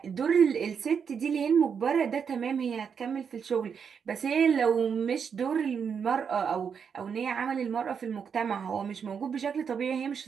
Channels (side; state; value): left; quieter; 6.8 dB